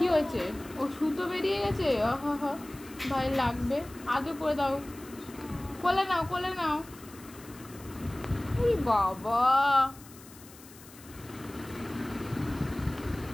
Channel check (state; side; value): noise; left; hiss, 20 dB below the sound